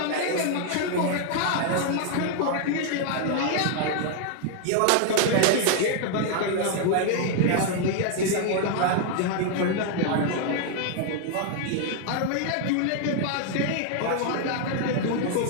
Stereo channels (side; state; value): both; different; correlation 0.00